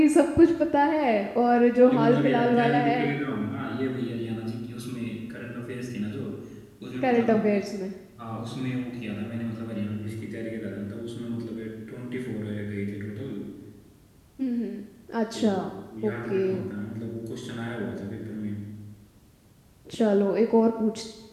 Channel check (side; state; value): both; identical; correlation 1.00